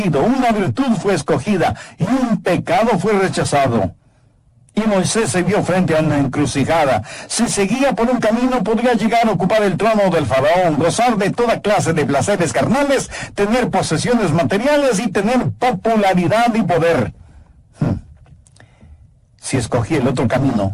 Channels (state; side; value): identical; both; correlation 1.00